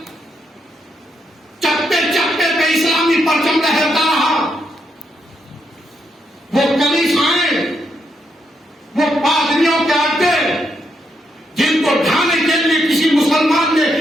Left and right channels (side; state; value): both; normal; correlation 0.79